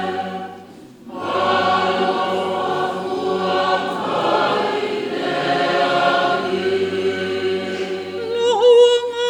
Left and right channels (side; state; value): both; identical; correlation 1.00